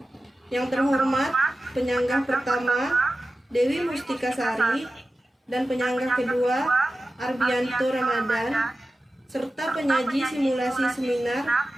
Yang terhormat penyanggah pertama Dewi Mustika Sari dan penyanggah kedua Arbianto Ramadan, serta penyaji simulasi seminar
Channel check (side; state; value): both; normal; correlation 0.94